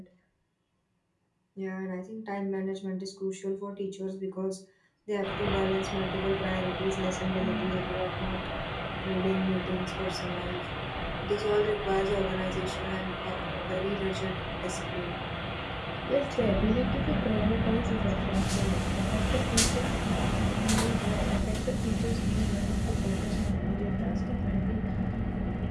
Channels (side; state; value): both; identical; correlation 1.00